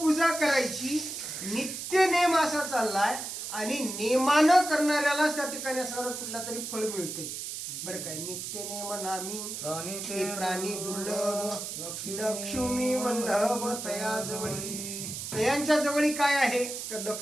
करायची, नित्य नेम असा चाललाय आणि नेमानं करणाऱ्यालाच त्या ठिकाणी असणारं कुठला तरी फळ मिळते. बरं काय नित्य नेम नामी ते प्राणी दुर्लभ लक्ष्मी वल्लभ तया जवळी. तयांच्या जवळी काय आहे तर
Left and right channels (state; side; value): noise; right; hiss, 6 dB below the sound